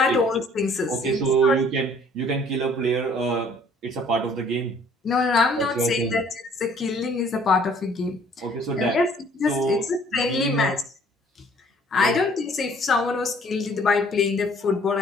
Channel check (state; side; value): normal; both; correlation 0.58